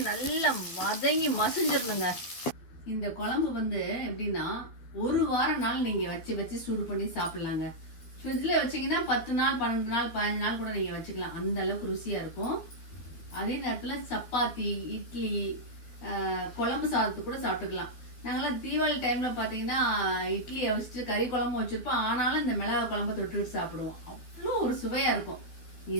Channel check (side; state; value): right; late; 13 ms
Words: நல்லா வதங்கி மசிஞ்சிருக்குங்க. இந்த குழம்பு எப்படின்னா ஒரு வாரம் நாள் நீங்க வச்சு சூடு பண்ணி சாப்பிடலாங்க. ஃப்ரிட்ஜ்ல வச்சீங்கன்னா 10 நாள், 12 நாள், 15 நாள் கூட நீங்க வச்சுக்கலாம். அந்த அளவுக்கு ருசியா இருக்கும். அதே நேரத்துல சப்பாத்தி, இட்லி, குழம்பு சாதத்துக்கு கூட சாப்பிட்டுக்கலாம். நாங்கெல்லாம் தீபாவளி டைம்ல பாத்தீங்கன்னா இட்லி வச்சுட்டு கறி குழம்பு வச்சிருப்போம். ஆனாலும் இந்த மிளகாய் குழம்பு தொட்டுக்கிட்டு சாப்பிடுவோம். அவ்வளோ ஒரு சுவையா இருக்கும்.